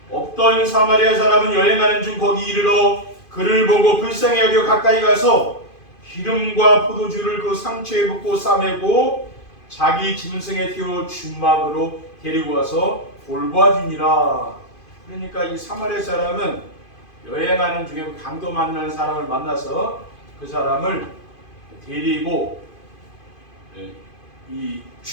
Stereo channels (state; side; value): late; right; 2.5 ms